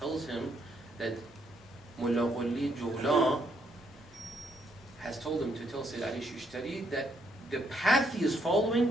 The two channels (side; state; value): both; normal; correlation 0.73